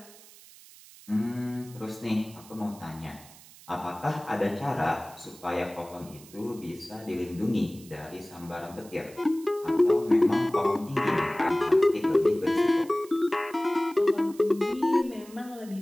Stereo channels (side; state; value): right; noise; hiss, 21 dB below the sound